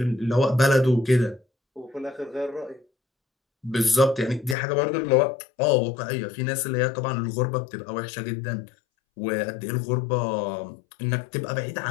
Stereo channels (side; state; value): right; drops out; at 4.5 s